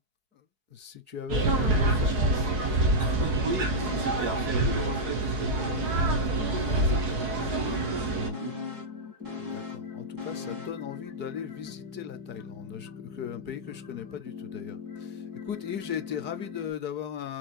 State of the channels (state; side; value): late; left; 4.7 ms